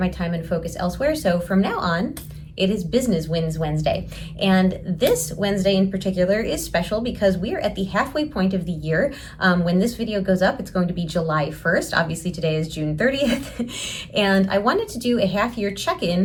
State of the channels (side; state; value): both; identical; correlation 1.00